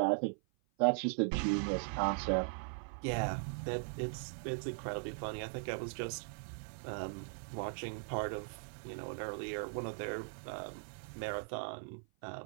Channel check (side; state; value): left; silent; 52 dB below the other